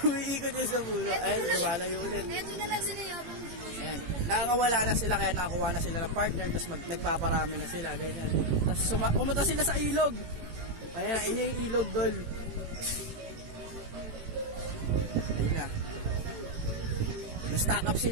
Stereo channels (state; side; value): late; left; 18 ms